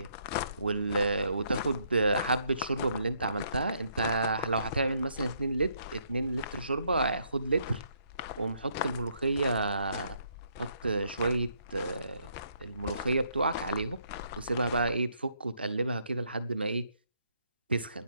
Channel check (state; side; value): inverted; both; correlation -0.71